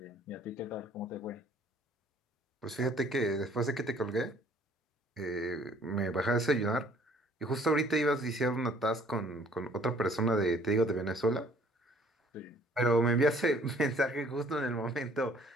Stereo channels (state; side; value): normal; both; correlation 0.58